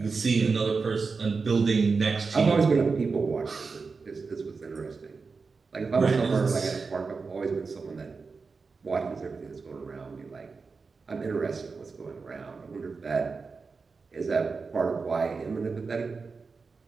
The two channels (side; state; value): left; quieter; 4.6 dB